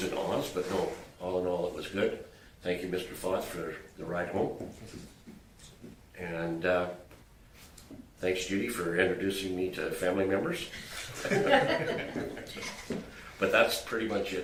and ahs, but no, all in all, it was good. Thank you, Mr. Foth, for the ride home. And thanks, Judy, for introducing me to family members. But that's pretty much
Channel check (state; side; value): identical; both; correlation 1.00